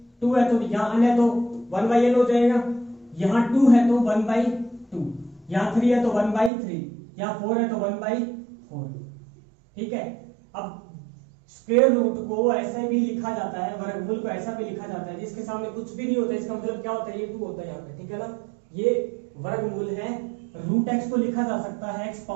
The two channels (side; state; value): left; drops out; at 6.5 s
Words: 2 है तो यहाँ n है तो 1 बाई n हो जाएगा, यहाँ 2 है तो 1 बाई 2, यहाँ 3 है तो 1 बाई 3, यहाँ 4 है तो 1 बाई 4, ठीक है। अब स्क्वायर रूट को ऐसे भी लिखा जाता है, वर्गमूल को ऐसा भी लिखा जाता है जिसके सामने कुछ भी नहीं होता, इसका मतलब क्या होता है, ये 2 होता है यहाँ पे, ठीक है ना। ये वर्गमूल है, रूट एक्स को लिखा जा सकता है x